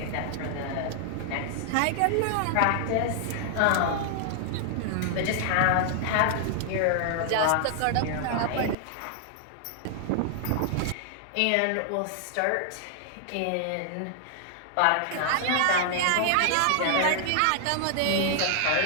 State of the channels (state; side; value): different; both; correlation 0.00